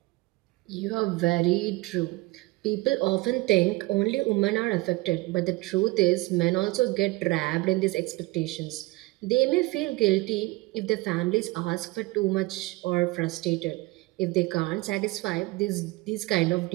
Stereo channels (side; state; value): left; quieter; 21.9 dB